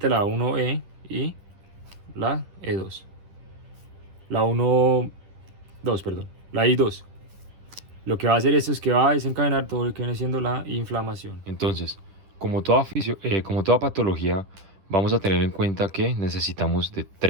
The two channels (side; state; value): left; late; 11 ms